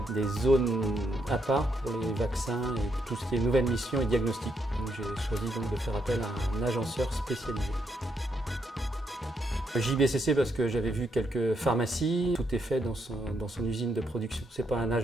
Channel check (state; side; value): normal; both; correlation 0.78